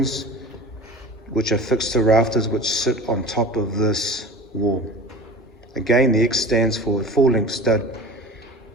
which are fixed to rafters which sit on top of this wall. Again, the X stands for full-length stud,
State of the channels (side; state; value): both; normal; correlation 0.36